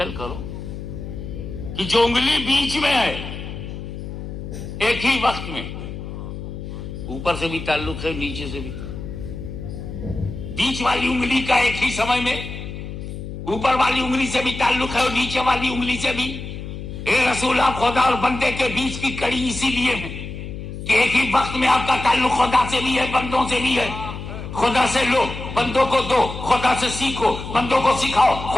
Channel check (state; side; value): noise; left; hum, 9 dB below the sound